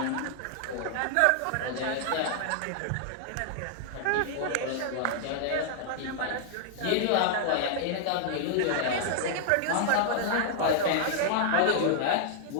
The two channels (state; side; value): different; both; correlation -0.01